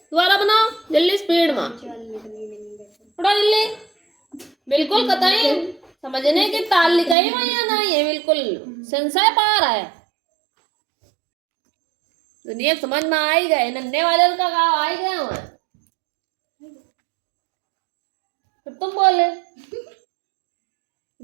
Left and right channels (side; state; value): left; drops out; at 7.2 s